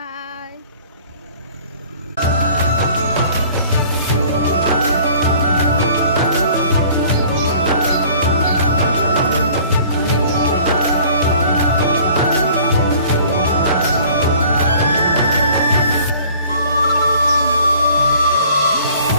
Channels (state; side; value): inverted; both; correlation -0.51